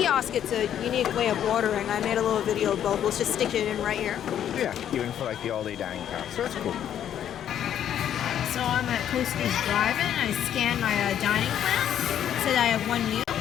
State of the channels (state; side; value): quieter; right; 10.1 dB